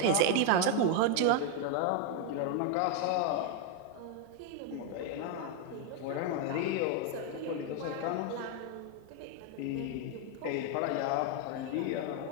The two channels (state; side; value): different; both; correlation 0.01